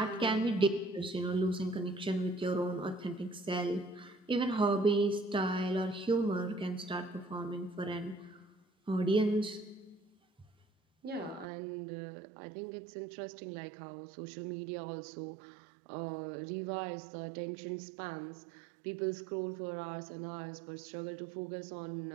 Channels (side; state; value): left; drops out; at 11.5 s